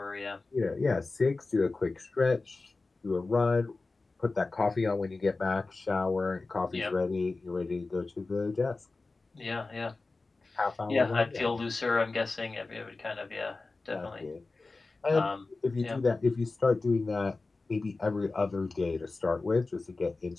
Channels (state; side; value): quieter; right; 3.6 dB